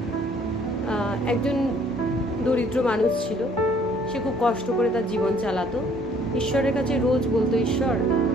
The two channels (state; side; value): normal; both; correlation 0.61